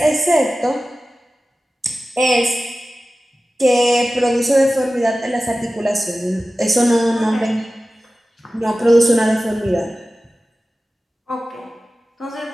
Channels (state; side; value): normal; both; correlation 0.95